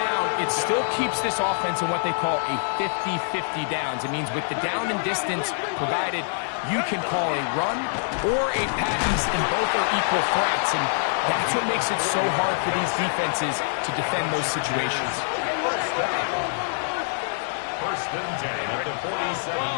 it still keeps this offense in what they call a 50-50 downs. It means with the down and distance provided, you can call a run or a pass, and both are equal threats. And that's what makes it so hard for these defenses to defend those situations. First and 10 at the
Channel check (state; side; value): silent; right; 62 dB below the other